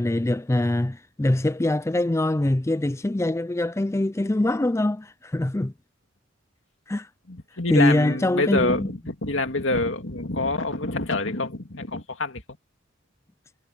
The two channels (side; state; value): both; normal; correlation 0.65